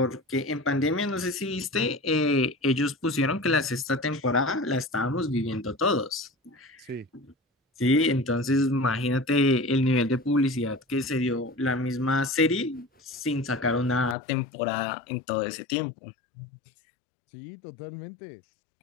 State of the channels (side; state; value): right; drops out; at 14.2 s